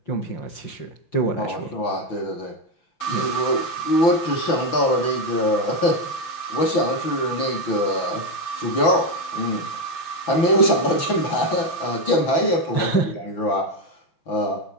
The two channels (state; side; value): late; right; 5.9 ms